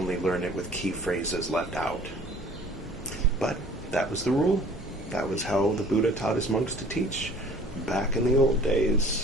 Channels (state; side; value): normal; both; correlation 0.50